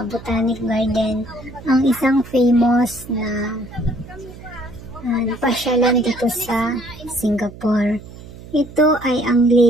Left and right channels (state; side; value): noise; right; hum, 17 dB below the sound